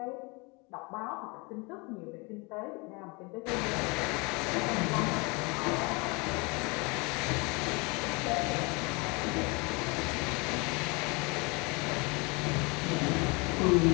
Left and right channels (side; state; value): right; quieter; 28.4 dB